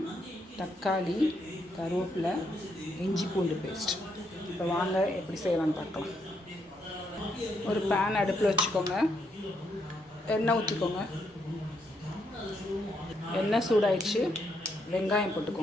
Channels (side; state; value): both; normal; correlation 0.77